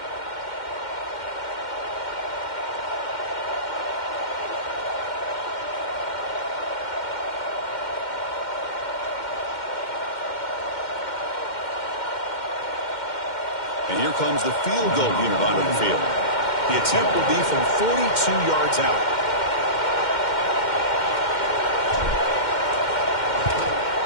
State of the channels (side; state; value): right; late; 2.1 ms